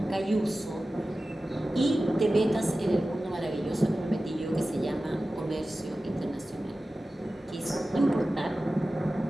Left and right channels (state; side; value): normal; both; correlation 0.95